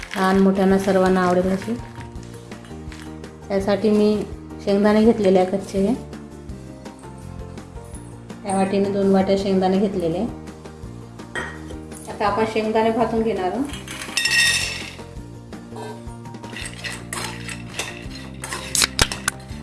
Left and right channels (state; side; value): identical; both; correlation 1.00